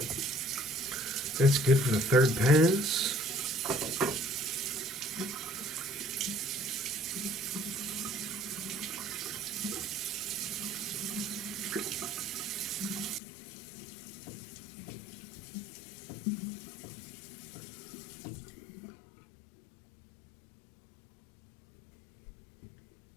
good for the third pass.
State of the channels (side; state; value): right; drops out; at 13.2 s